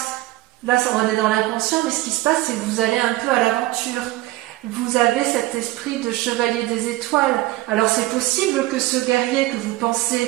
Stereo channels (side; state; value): left; quieter; 18.3 dB